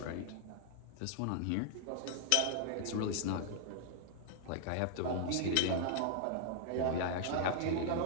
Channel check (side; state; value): both; different; correlation 0.00